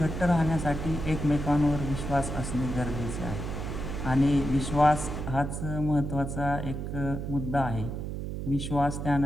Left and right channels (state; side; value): noise; right; hum, 5 dB below the sound